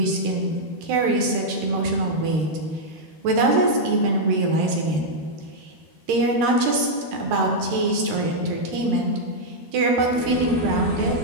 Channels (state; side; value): late; left; 13 ms